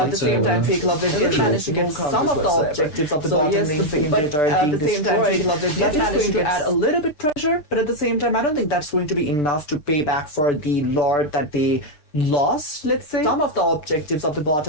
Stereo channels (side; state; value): right; late; 6.8 ms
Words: the same time, Fake Lovely did manage to get some of the objectives of the bottom lane secondary turret being destroyed. Fake Lovely did manage to add a little bit pressure, but at the same time, I don't think that's going to be enough to pay back for the Lord that they lost, let's say. Some of the objectives of the